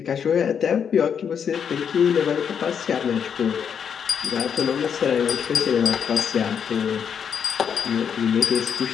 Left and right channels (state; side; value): quieter; right; 7.5 dB